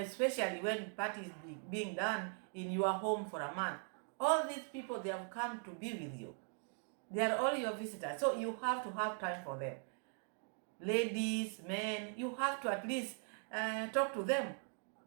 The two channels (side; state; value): left; silent; 51 dB below the other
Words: when parties being done in your home for a month. All these people, they have come to be with you. They are all your visitors, so you have to have time for them. Ladies, men, you have to at least talk to them.